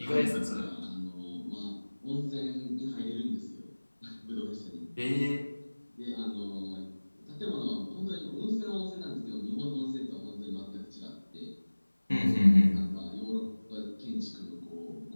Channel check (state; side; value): inverted; both; correlation -1.00